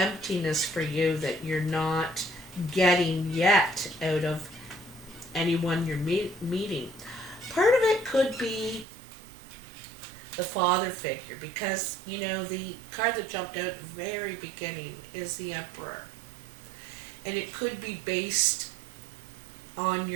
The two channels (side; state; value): left; drops out; at 8.8 s